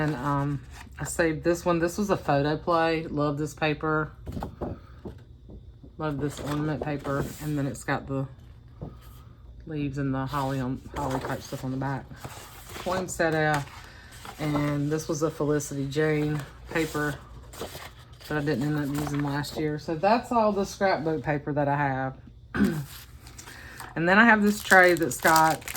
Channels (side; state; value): both; identical; correlation 1.00